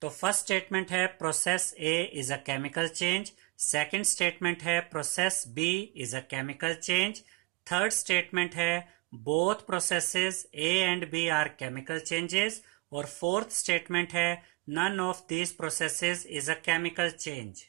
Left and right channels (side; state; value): left; quieter; 24.8 dB